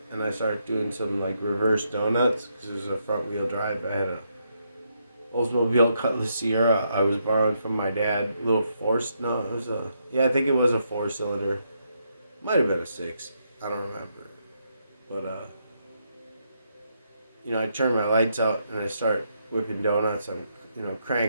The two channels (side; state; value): both; inverted; correlation -0.78